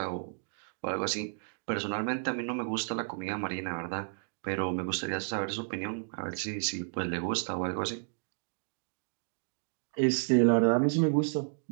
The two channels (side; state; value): left; silent; digital silence